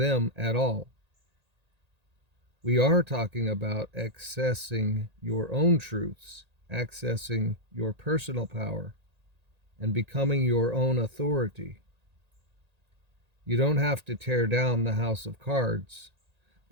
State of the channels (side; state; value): left; late; 1.8 ms